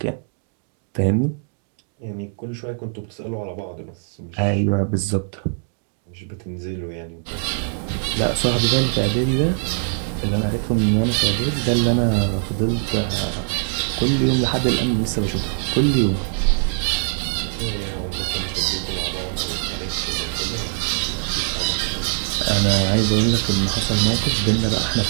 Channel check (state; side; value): silent; left; digital silence